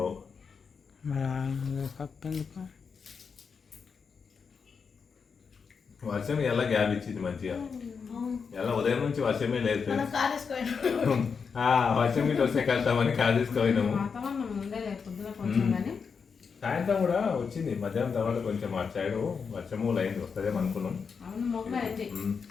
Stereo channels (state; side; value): quieter; right; 5.8 dB